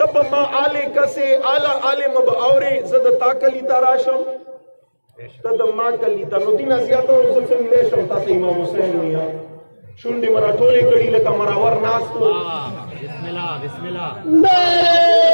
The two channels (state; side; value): inverted; both; correlation -1.00